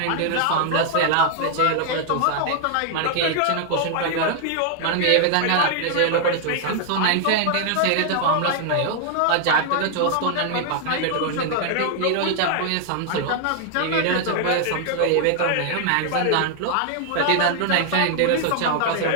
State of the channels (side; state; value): both; different; correlation 0.00